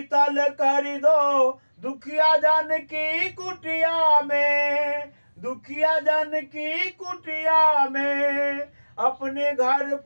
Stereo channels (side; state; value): both; inverted; correlation -1.00